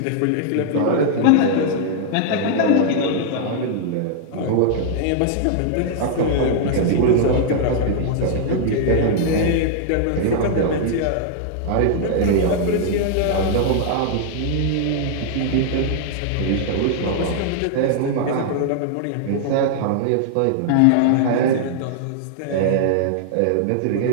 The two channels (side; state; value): both; different; correlation -0.01